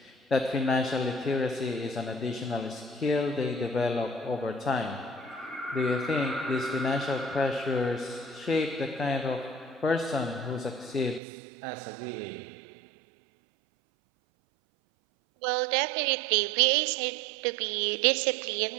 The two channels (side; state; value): left; drops out; at 11.2 s